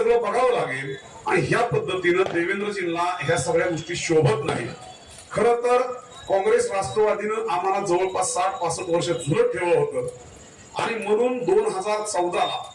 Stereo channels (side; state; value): both; identical; correlation 1.00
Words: बघावं लागेल. आणि ह्या पद्धतीनं देवेंद्रजींना ह्या सगळ्या गोष्टी शोभत नाही. खरं तर काँग्रेस राष्ट्रवादीनं आम्हाला जवळपास 60-65 वर्ष झुलत ठेवलं होतं आणि म्हणून 2014ला